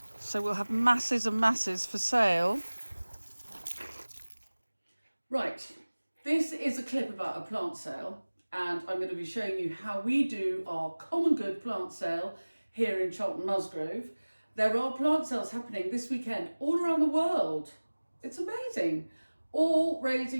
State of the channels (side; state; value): both; inverted; correlation -1.00